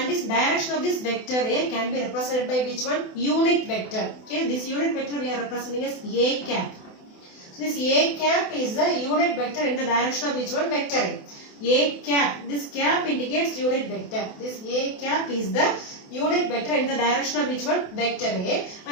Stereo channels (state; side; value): late; right; 28 ms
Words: this direction of this vector A can be represented by which one? Unit vector. Okay, this unit vector we are representing as A cap. So this A cap is the unit vector in the direction of which one? Vector A. A cap. This cap indicates unit vector. This A cap is the unit vector in the direction of which one? Vector A.